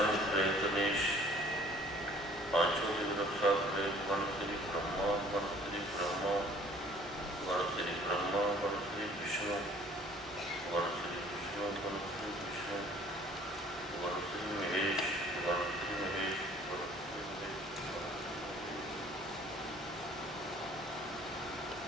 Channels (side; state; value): both; normal; correlation 0.54